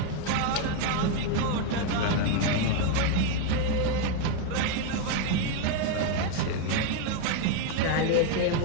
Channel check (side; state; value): both; different; correlation 0.01